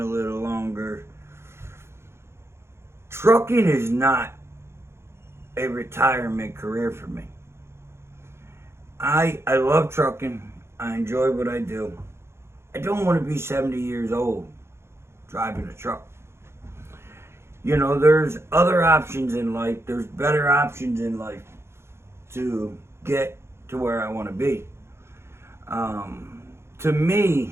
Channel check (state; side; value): late; left; 0.12 ms